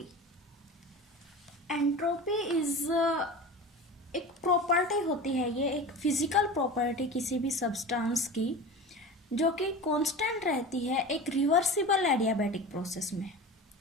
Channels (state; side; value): normal; both; correlation 0.32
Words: एंट्रोपी इज एक प्रॉपर्टी होती है। ये एक फिजिकल प्रॉपर्टी किसी भी सब्सटेंस की जो कि कांस्टेंट रहती है एक रिवर्सिबल एडियाबैटिक प्रोसेस में।